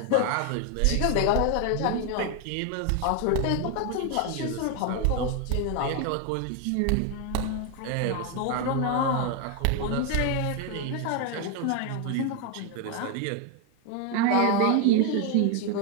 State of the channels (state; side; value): different; both; correlation 0.01